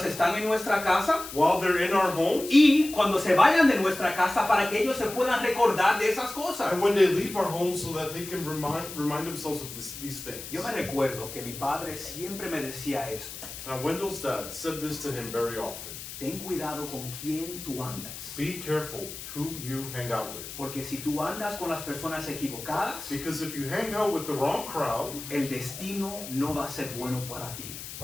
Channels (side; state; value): left; noise; hiss, 11 dB below the sound